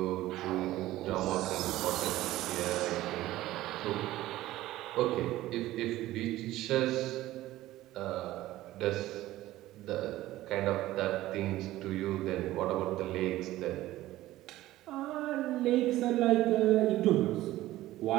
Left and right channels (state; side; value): quieter; left; 15.8 dB